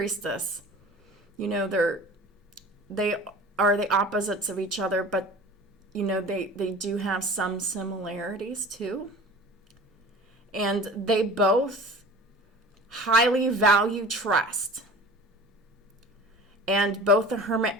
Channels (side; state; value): both; normal; correlation 0.40